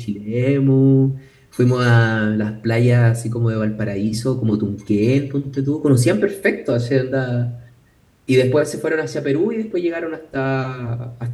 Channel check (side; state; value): both; identical; correlation 1.00